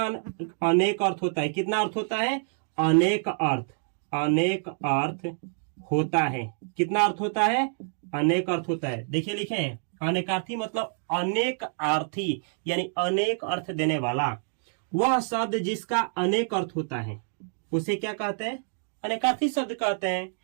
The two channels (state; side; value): silent; left; 60 dB below the other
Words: अनेक अर्थ होता है? कितना अर्थ होता है? अनेक अर्थ, अनेक अर्थ होता है। कितना अर्थ होता है? अनेक अर्थ होता है। देखिए लिखे हैं, अनेकार्थी मतलब अनेक अर्थी, यानी अनेक अर्थ देने वाला। वह शब्द जिसका अनेक अर्थ होता है उसे क्या कहते हैं? अनेकार्थी शब्द कहते हैं।